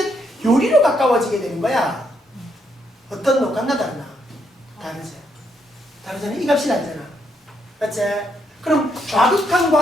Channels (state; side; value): normal; both; correlation 0.76